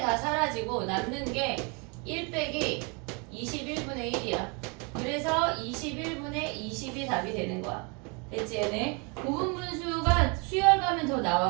사라지고 남는 게 1 빼기 21분의 1이야. 그래서 21분의 20이 답이 되는 거야. 됐지? 얘네 고분분수가 수열 가면 더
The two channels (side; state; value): left; quieter; 32.3 dB